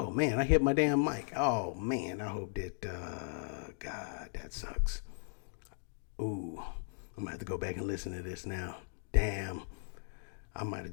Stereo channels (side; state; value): right; silent; digital silence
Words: man, I hit my damn mic. Oh man, I hope that God, that sucks. Ooh, I'm gonna have to go back and listen to this now. Damn. I might have